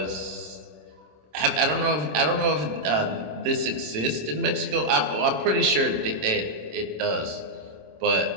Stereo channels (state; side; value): late; left; 26 ms